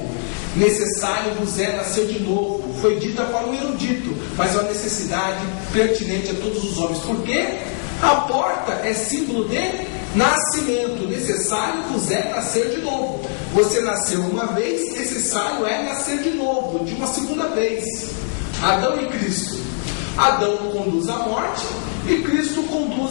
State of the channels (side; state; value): right; silent; 59 dB below the other